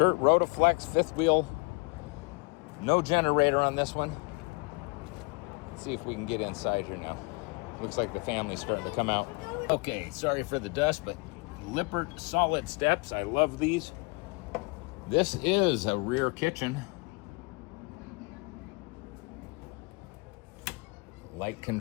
Rotaflex, 5th wheel. No generator on this one. Let's see if we can get inside here now. Looks like the family's starting to come out. Okay, sorry for the dust, but Lippert solid steps. I love these. This is a rear kitchen. Light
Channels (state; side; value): quieter; right; 28.9 dB